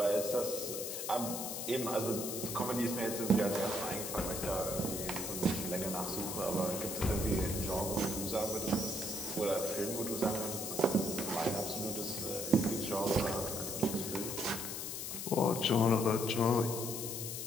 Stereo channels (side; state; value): left; noise; hiss, 5 dB below the sound